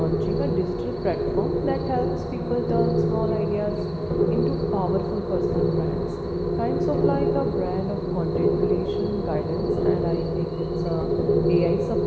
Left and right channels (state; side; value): identical; both; correlation 1.00